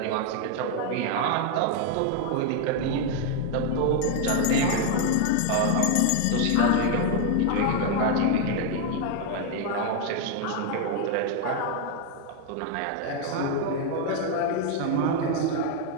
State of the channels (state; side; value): different; both; correlation 0.01